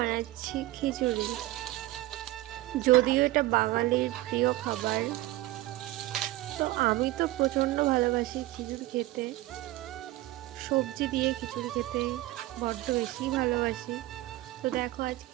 খিচুড়ি। যদিও এটা বাঙালির প্রিয় খাবার, তো আমি তো প্রচণ্ড ভালোবাসি খিচুড়ি খেতে। সবজি দিয়ে খিচুড়ি খেতে বড্ড বেশি ভালোবাসি। তো দেখো আজ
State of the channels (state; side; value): quieter; left; 17.2 dB